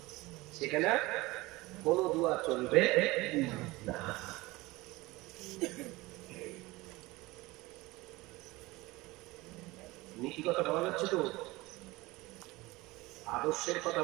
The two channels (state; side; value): quieter; left; 21.1 dB